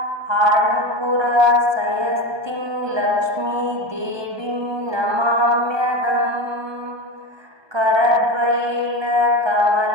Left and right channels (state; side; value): late; left; 1.2 ms